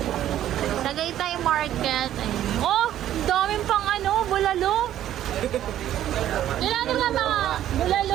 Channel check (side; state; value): left; quieter; 12.0 dB